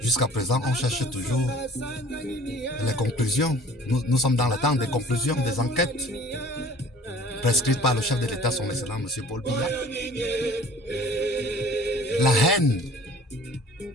Jusqu'à présent, on cherche toujours les conclusions. Nous sommes dans l'attente des conclusions des enquêtes prescrites par le chef de l'État, son excellent M. Paul Biya. La haine,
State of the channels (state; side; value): normal; both; correlation 0.49